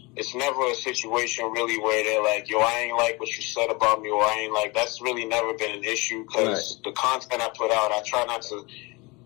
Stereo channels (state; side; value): quieter; right; 25.9 dB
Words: It's never a situation really where they're like, yo, I ain't like what you said about me, or I ain't like, that's really never been an issue because the content I put out, I try not to